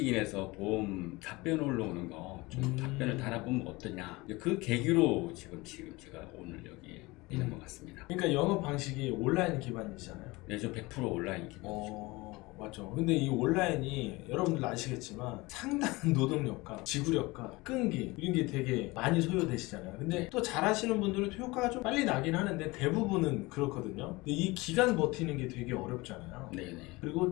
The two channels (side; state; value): right; quieter; 22.6 dB